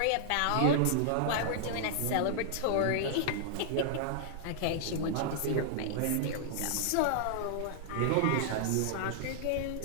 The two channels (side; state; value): both; different; correlation -0.01